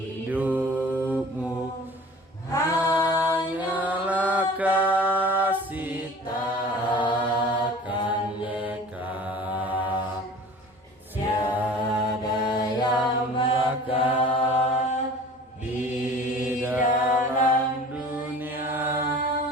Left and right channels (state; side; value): normal; both; correlation 0.44